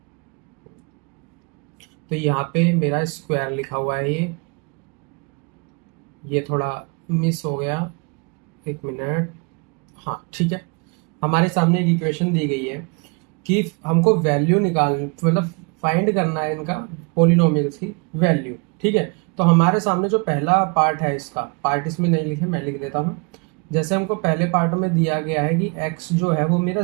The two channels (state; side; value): quieter; left; 33.1 dB